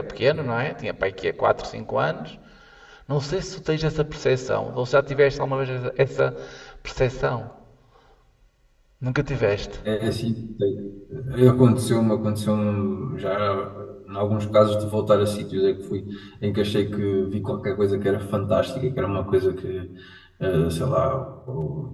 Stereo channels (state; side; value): identical; both; correlation 1.00